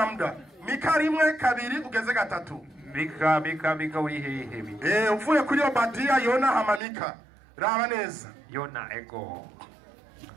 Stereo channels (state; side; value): drops out; left; at 6.8 s